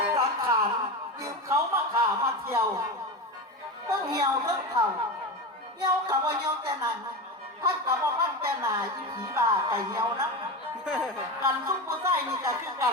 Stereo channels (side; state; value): both; normal; correlation 0.22